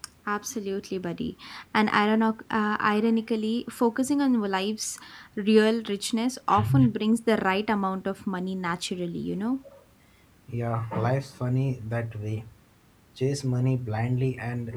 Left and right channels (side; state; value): both; identical; correlation 1.00